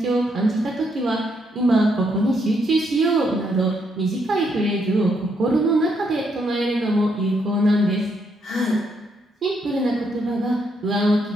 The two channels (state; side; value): normal; both; correlation 0.76